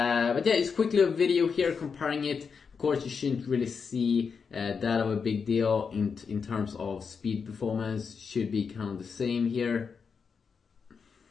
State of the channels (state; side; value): quieter; right; 5.8 dB